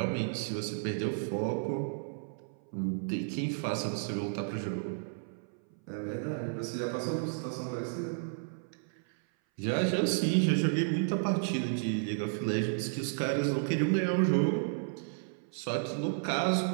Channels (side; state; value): left; silent; 56 dB below the other